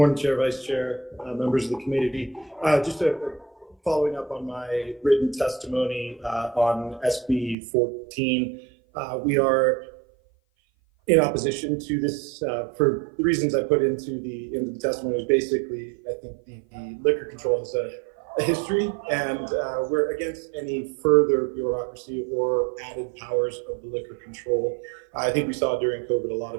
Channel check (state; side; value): drops out; left; at 7.6 s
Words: Chair, Vice Chair, members of the committee. Just following up on my written testimony on SB 14. We are in opposition to this for the reasons I put into the testimony. Is basically, I think the liquor control has a history, and we're against any further bureaucracy or added powers of the liquor control. I think we saw during COVID a lot